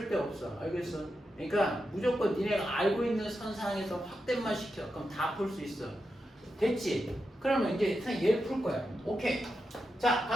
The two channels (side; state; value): both; normal; correlation 0.88